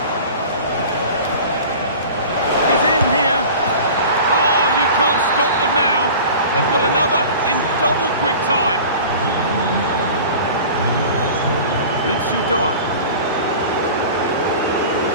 He's in here. Oh, you can't stop them now. They've got another in double quick time. Ritsu Doan.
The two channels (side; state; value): both; inverted; correlation -0.39